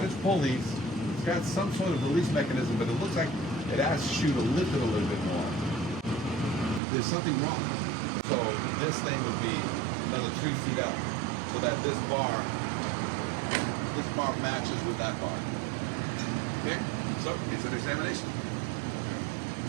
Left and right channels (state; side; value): drops out; left; at 6.8 s